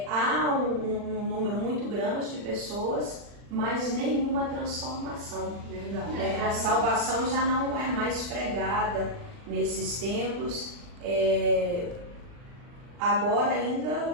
há um número muito grande de pessoas, mas nenhuma transformação. Verdade. A salvação já não é mais pregada nesses templos, agora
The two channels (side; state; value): left; late; 40 ms